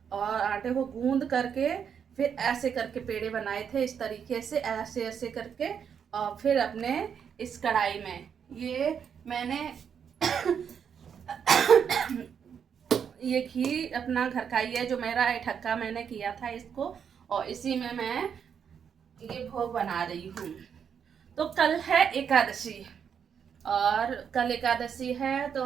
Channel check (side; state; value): left; quieter; 7.5 dB